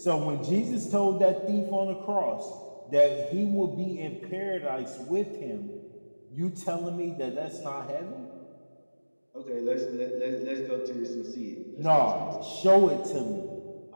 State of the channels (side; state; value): both; inverted; correlation -1.00